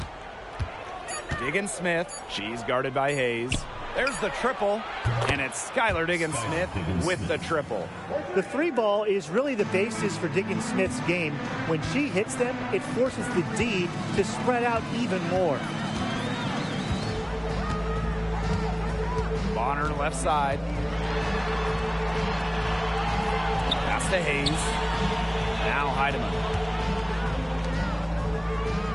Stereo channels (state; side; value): identical; both; correlation 1.00